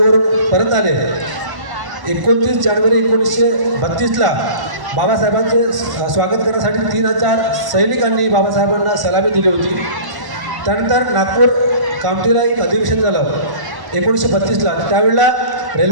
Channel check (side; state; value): left; late; 1.1 ms